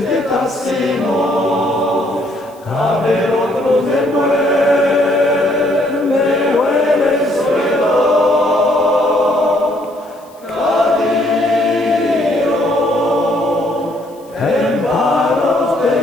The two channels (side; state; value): left; noise; hiss, 29 dB below the sound